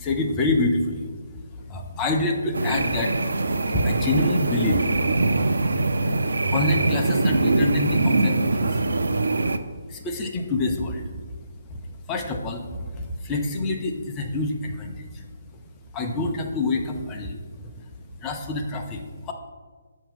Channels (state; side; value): inverted; both; correlation -0.70